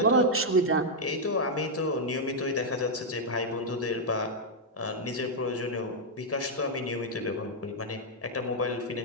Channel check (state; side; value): normal; both; correlation -0.03